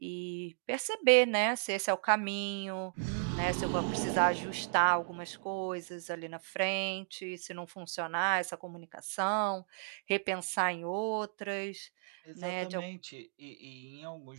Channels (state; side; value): silent; left; digital silence